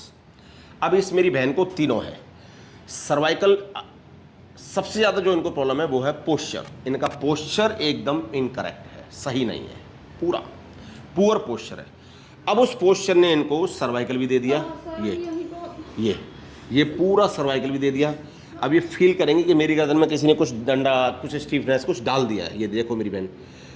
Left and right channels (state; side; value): identical; both; correlation 1.00